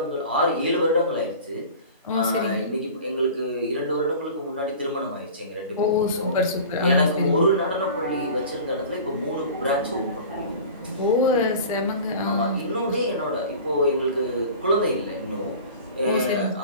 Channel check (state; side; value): inverted; both; correlation -0.39